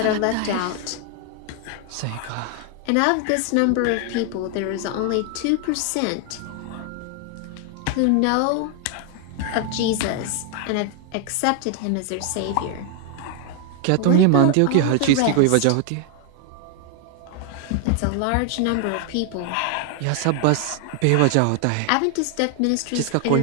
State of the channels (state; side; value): different; both; correlation 0.00